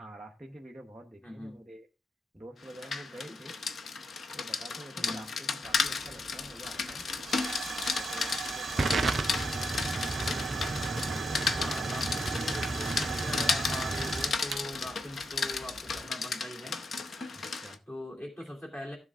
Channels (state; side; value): normal; both; correlation 0.83